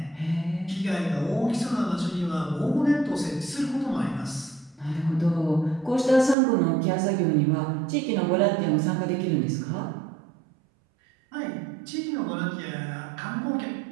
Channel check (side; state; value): left; drops out; at 6.4 s